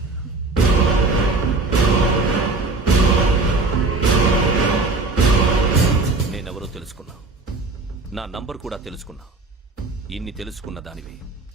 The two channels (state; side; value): quieter; left; 3.5 dB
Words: నేనెవరో తెలుసుకున్నావు, నా నంబర్ కూడా తెలుసుకున్నావు. ఇన్ని తెలుసుకున్న దానివి